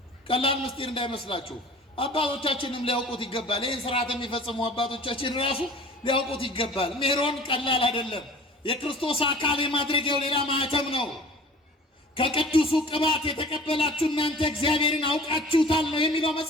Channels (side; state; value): both; normal; correlation 0.46